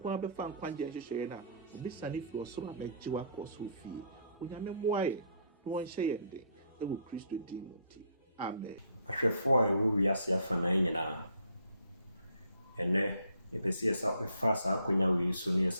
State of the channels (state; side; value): inverted; both; correlation -0.64